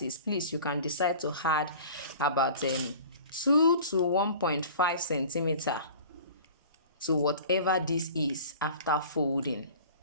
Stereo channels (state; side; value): inverted; both; correlation -0.43